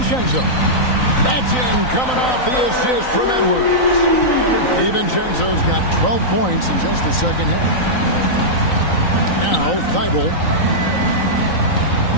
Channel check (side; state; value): right; late; 3.9 ms